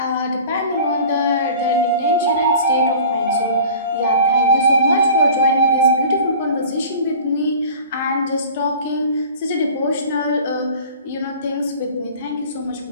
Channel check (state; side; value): inverted; both; correlation -0.42